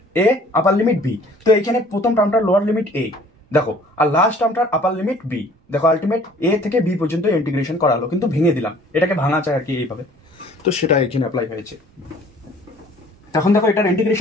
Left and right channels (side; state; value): both; normal; correlation 0.53